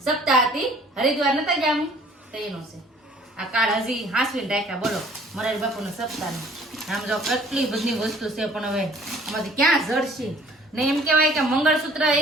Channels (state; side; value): normal; both; correlation 0.55